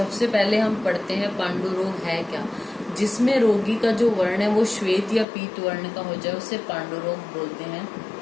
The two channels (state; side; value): drops out; right; at 5.2 s